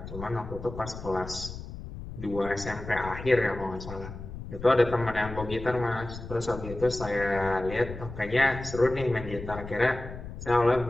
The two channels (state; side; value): noise; left; rumble, 11 dB below the sound